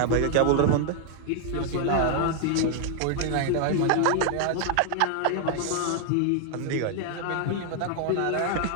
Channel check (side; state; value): both; different; correlation 0.00